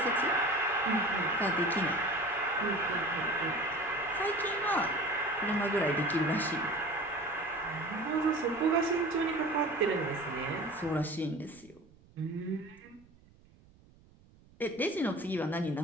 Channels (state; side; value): noise; right; rumble, 27 dB below the sound